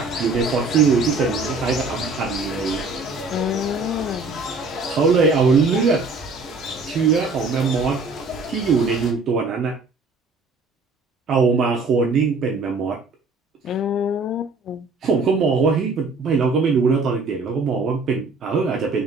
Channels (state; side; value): quieter; left; 3.7 dB